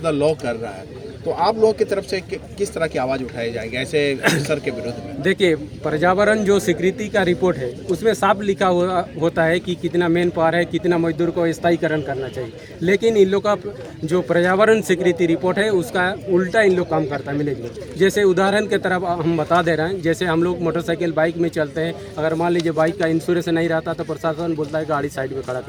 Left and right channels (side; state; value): both; identical; correlation 1.00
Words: द लॉ कर रहा है, तो आप लोगों की तरफ से किस तरह की आवाज़ उठाई जाएगी ऐसे सर के विरुद्ध में? देखिए, पर्यावरण जो स्वीकृति का रिपोर्ट है उसमें साफ लिखा हुआ होता है कि कितना मेन पावर है, कितना मजदूर को स्थायीकरण करना चाहिए, लेकिन इन लोग का जो पर्यावरण स्वीकृति रिपोर्ट है उसका उल्टा इन लोग काम करता है मैनेजमेंट। जैसे उदाहरण के तरफ हम बता दे रहे हैं, जैसे हम लोग मोटरसाइकिल बाइक में चलते हैं, अगर मान लीजिए बाइक का इंश्योरेंस नहीं रहता तो प्रशासन बोलता है गाड़ी साइड में खड़ा